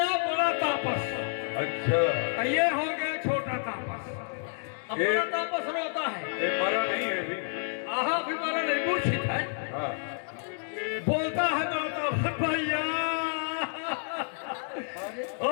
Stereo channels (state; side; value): silent; right; 58 dB below the other